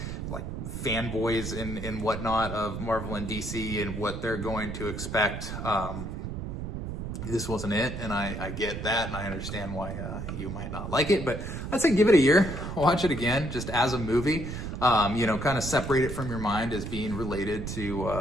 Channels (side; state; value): right; noise; rumble, 6 dB below the sound